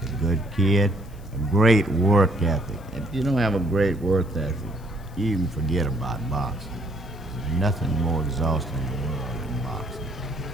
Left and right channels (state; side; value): noise; left; hiss, 28 dB below the sound